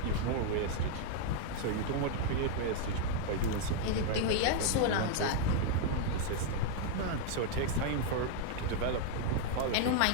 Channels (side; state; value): both; different; correlation 0.00